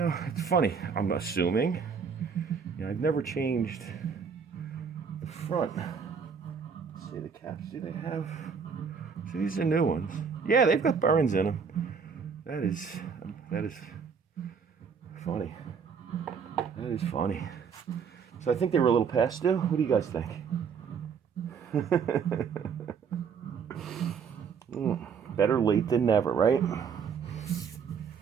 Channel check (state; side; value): quieter; left; 6.3 dB